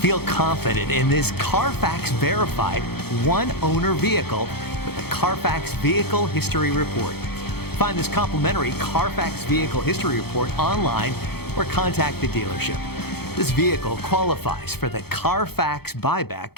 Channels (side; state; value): right; late; 0.96 ms